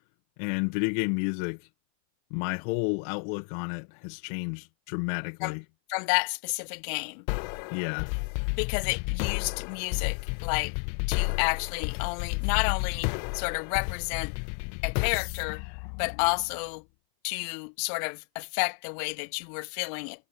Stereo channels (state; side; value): silent; right; 56 dB below the other